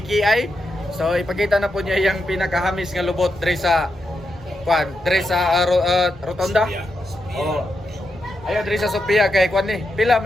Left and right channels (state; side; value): normal; both; correlation 0.85